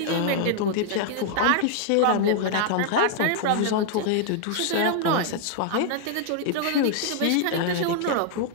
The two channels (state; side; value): different; both; correlation -0.01